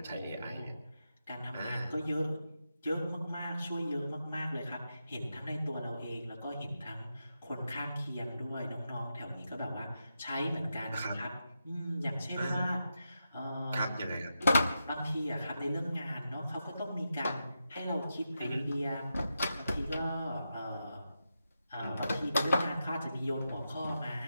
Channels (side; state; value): both; inverted; correlation -0.87